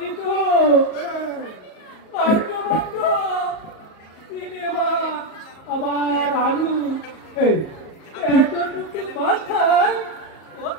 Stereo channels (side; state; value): right; late; 37 ms